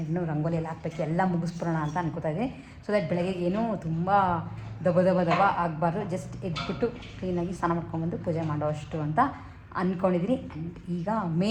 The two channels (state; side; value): identical; both; correlation 1.00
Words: ಇನ್ನೂ ರಂಗೋಲಿ ಎಲ್ಲ ಹಾಕ್ಬೇಕು, ಎಲ್ಲ ಮುಗಿಸ್ಬಿಡೋಣ ಅಂತ ಅನ್ಕೋತಾ ಇದ್ದೀನಿ. ಸೊ ದಟ್ ಬೆಳಗ್ಗೆ ಏನೂ ತುಂಬ ದಬ ಆಗಬಾರ್ದು. ಜಸ್ಟ್ ಎದ್ಬಿಟ್ಟು ಕ್ಲೀನಾಗಿ ಸ್ನಾನ ಮಾಡ್ಕೊಂಬಂದು ಪೂಜೆ ಮಾಡೋ ಅಷ್ಟು ಅಂತ ಅಂದ್ಕೊಂಡಿದ್ದೀನಿ. ಆ್ಯಂಡ್ ಈಗ